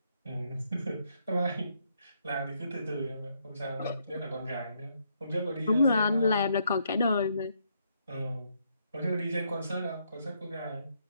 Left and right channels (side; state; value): both; inverted; correlation -0.74